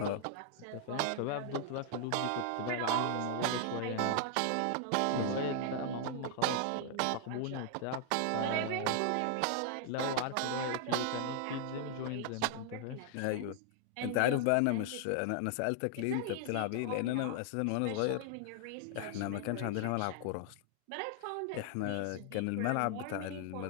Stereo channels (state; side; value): different; both; correlation 0.00